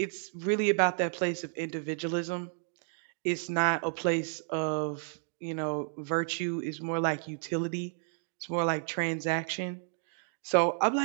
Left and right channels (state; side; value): silent; left; 57 dB below the other